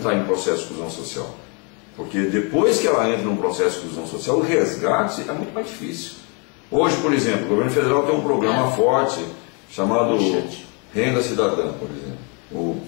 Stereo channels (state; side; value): quieter; right; 34.3 dB